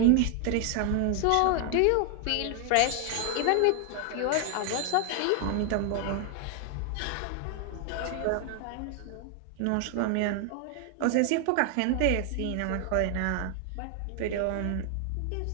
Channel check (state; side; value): different; both; correlation 0.00